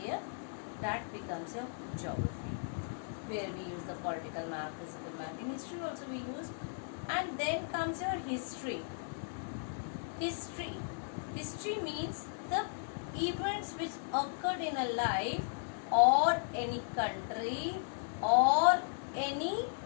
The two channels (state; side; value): silent; right; digital silence